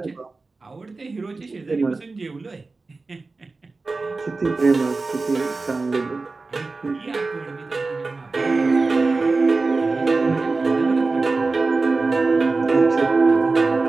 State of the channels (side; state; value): left; quieter; 3.7 dB